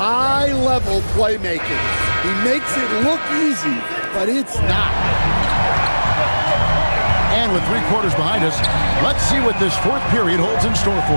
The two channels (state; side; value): inverted; both; correlation -1.00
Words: playmaking. He makes it look easy, but it's not. And with 3 quarters behind us, let's see what this fourth period holds in store